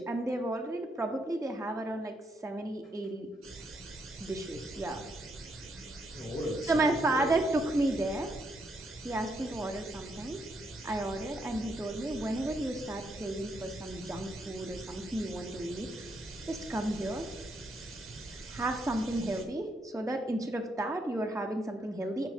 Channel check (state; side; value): normal; both; correlation 0.77